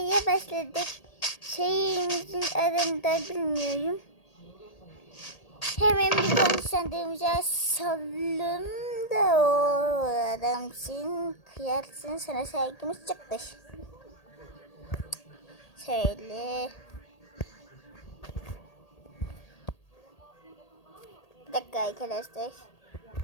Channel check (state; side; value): late; right; 1.8 ms